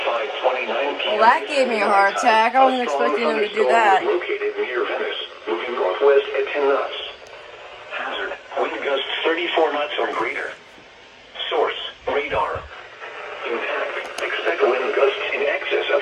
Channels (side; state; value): both; identical; correlation 1.00